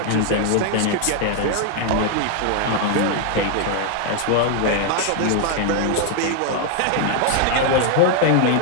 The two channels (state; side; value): different; both; correlation 0.00